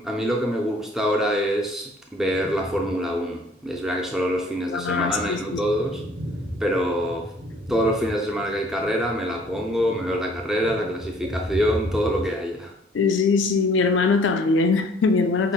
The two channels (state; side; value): normal; both; correlation 0.56